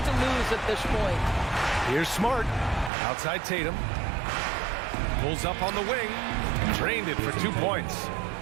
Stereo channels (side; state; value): left; drops out; at 2.9 s